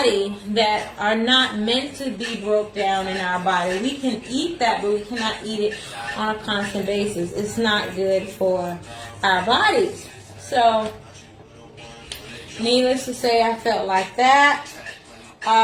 that are not meant to be broke down in our body. We can eat that, but we cannot eat it on a constant basis. It's not good for our bodies. So, needless to say, I felt like that.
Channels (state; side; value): identical; both; correlation 1.00